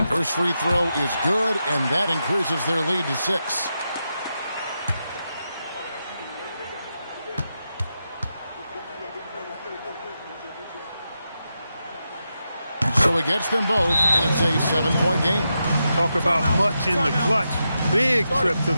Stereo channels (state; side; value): inverted; both; correlation -0.87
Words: First free throw is good, and that increases their lead to 6. So it gets them both, and it's a 7-point game. Talk about much in the clutch. Big trip to